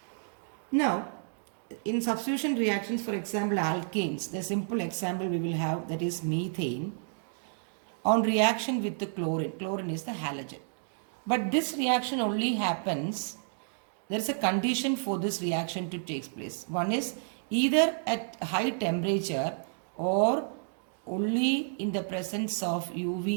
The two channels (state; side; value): silent; left; digital silence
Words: Now in substitution reactions, for example alkanes, the simple example we will have, that is methane on reaction with the chlorine. Chlorine is the halogen. But this reaction only happens, there is a condition for this reaction to take place. One is either at high temperature or only in the presence of